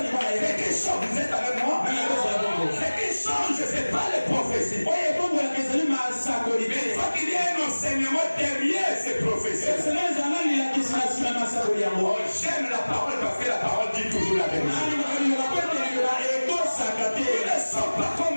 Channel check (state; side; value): inverted; both; correlation -1.00